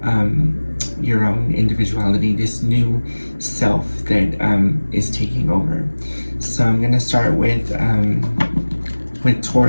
your own individuality, this new self that is taking over. So I'm going to start with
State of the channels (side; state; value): both; inverted; correlation -1.00